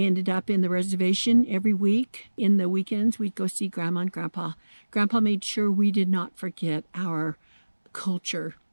up in the reservation every week. In the weekends, we'd go see Grandma and Grandpa. Grandpa made sure we did not forget our culture.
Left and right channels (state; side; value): inverted; both; correlation -1.00